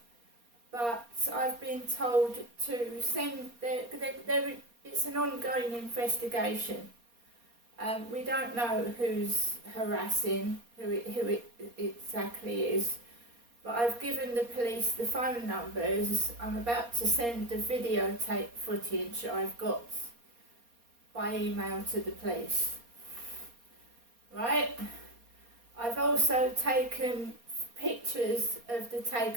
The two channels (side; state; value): left; late; 4.2 ms